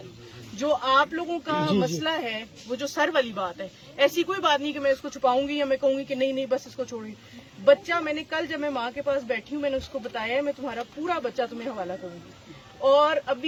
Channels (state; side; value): identical; both; correlation 1.00